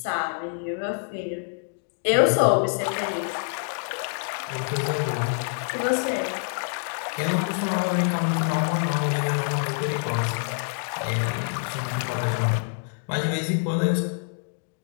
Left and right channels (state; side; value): silent; right; digital silence